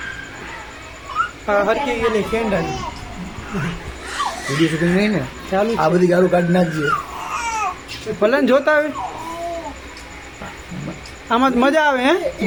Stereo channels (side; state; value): both; identical; correlation 1.00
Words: હરકી ગયેલી કેન્ડલ વિડીયો શૂટિંગ નહીં ને ચાલુ. આ બધી ગાળું કાઢી નાખજે. ભલે ને જોતા આવે આમાં જ મજા આવે. હે